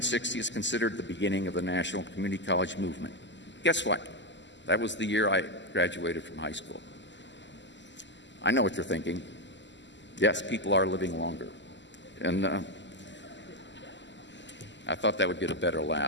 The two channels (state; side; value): late; right; 0.53 ms